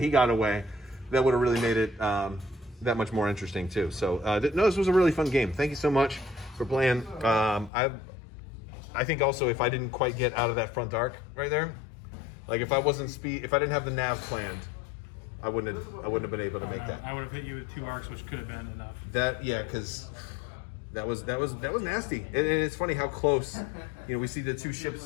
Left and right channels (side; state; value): right; drops out; at 7.7 s